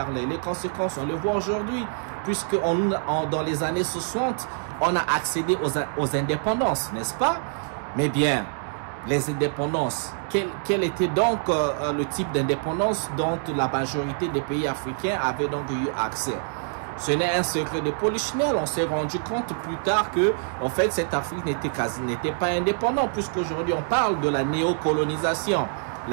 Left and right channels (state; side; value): silent; left; 61 dB below the other